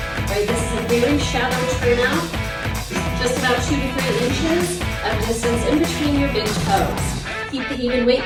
Right, this is a very shallow turnout, just about 2 to 3 inches of distance in between your big toes. Keep the even weight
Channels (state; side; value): identical; both; correlation 1.00